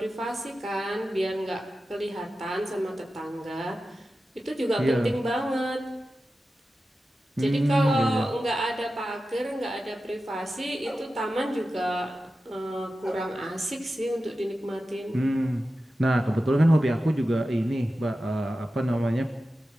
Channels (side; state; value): both; normal; correlation 0.93